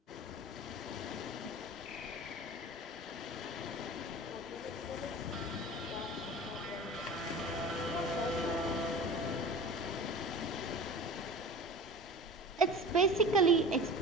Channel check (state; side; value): normal; both; correlation 0.36